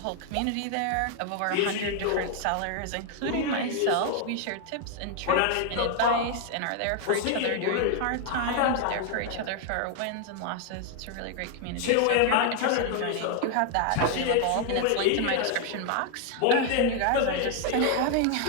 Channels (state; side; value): different; both; correlation 0.00